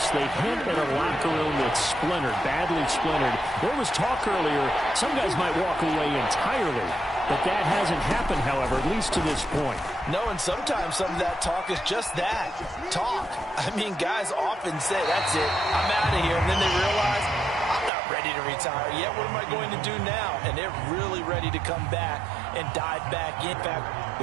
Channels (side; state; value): left; drops out; at 17.9 s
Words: they hint at a locker room that's splintered, badly splintered. There was talk earlier, some guys might walk away entirely. But that hasn't happened, however, at least to this point. No, and sometimes some of that talk is just that, talk. I mean, guys often say, that's it, I'm out of here. And then they realize, I'm not ready to retire yet. What am I going to do now? And they're really ready to come back and dive back in. In fact,